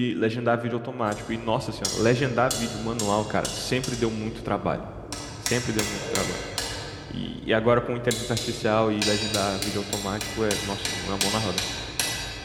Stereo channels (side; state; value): both; identical; correlation 1.00